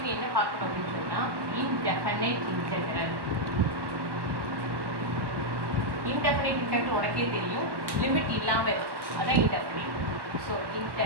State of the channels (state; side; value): late; left; 1.1 ms